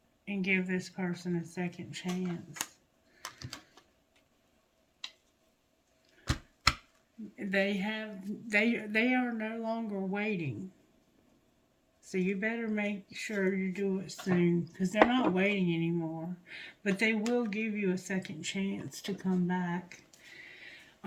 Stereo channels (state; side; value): identical; both; correlation 1.00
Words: and give this person a second chance. They are no longer waiting. So you better make sure you do it soon, because they're not waiting anymore. But they will give you a second chance to come back.